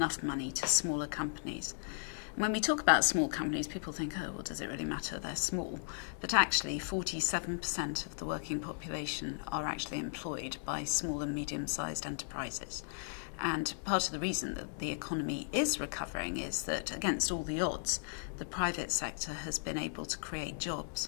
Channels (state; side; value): silent; right; 54 dB below the other